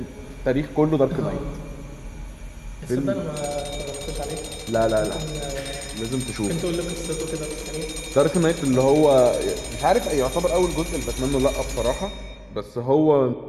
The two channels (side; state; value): both; identical; correlation 1.00